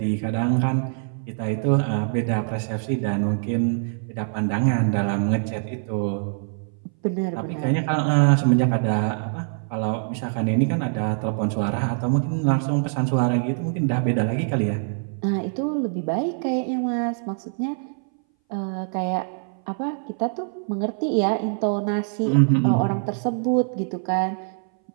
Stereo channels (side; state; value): left; silent; 60 dB below the other